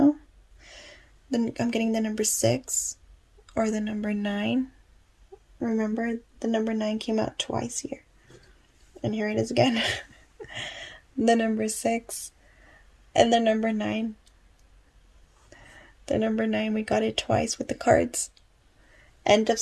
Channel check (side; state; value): both; identical; correlation 1.00